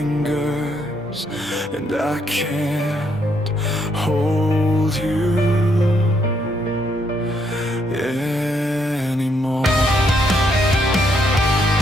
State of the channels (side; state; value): both; normal; correlation 0.73